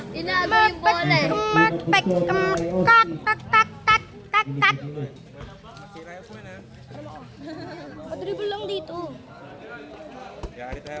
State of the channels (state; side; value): identical; both; correlation 1.00